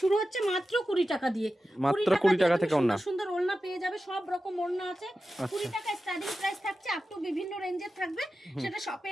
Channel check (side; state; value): both; normal; correlation 0.93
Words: শুরু হচ্ছে মাত্র 20 টাকা দিয়ে, মাত্র 20 টাকা থেকে ওড়না, সুন্দর ওড়না পেয়ে যাবে, সব রকম ওড়না আছে। 20 টাকা স্টার্টিং প্রাইস থাকছে, আপ টু বিভিন্ন রেঞ্জের থাকবে, সেটা শপে